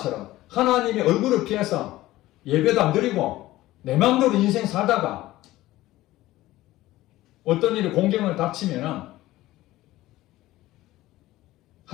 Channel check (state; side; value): quieter; right; 16.6 dB